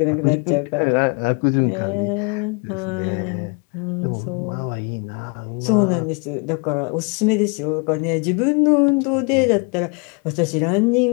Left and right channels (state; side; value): quieter; right; 33.3 dB